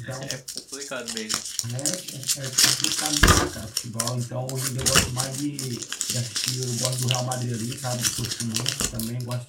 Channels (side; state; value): both; identical; correlation 1.00